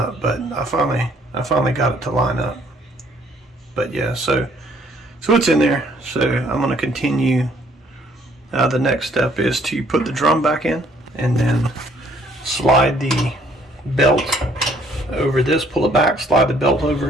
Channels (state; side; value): normal; both; correlation 0.63